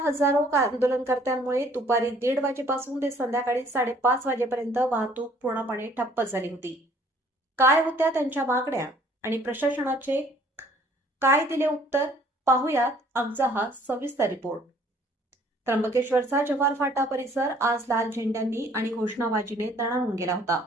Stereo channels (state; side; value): normal; both; correlation 0.58